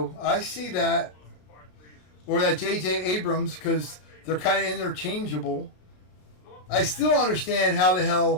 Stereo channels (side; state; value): right; late; 33 ms